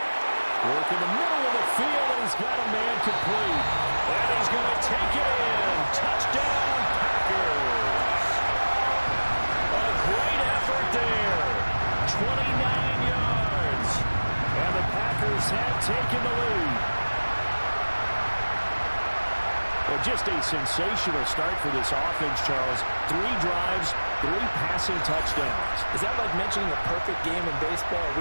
Work in the middle of the field, and he's got a man complete. And he's going to take it in. Touchdown, Packers. A great effort there. 29 yards. And the Packers have taken the lead. Well, just a sensational start for this offense, Charles. 3 drives, 3 passing touchdowns. Is that like mentioning a perfect game in baseball? Or are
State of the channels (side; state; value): both; inverted; correlation -1.00